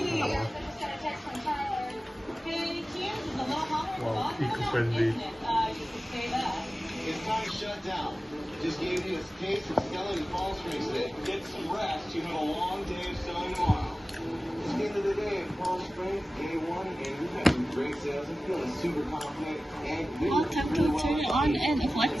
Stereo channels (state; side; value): normal; both; correlation 0.96